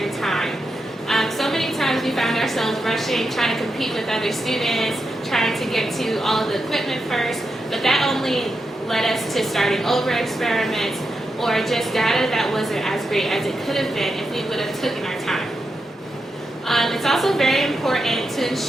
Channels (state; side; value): normal; both; correlation 0.87